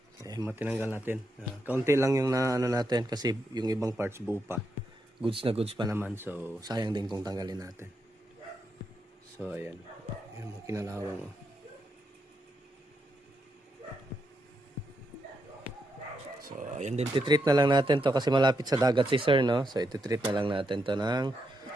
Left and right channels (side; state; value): both; normal; correlation 0.82